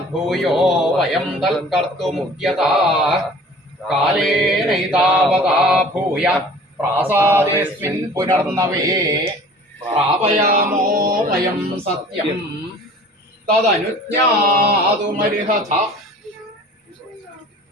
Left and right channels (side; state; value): both; normal; correlation 0.46